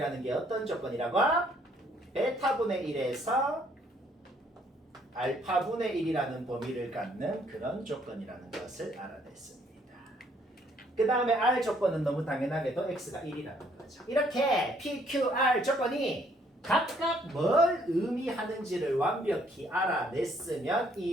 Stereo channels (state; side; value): normal; both; correlation 0.65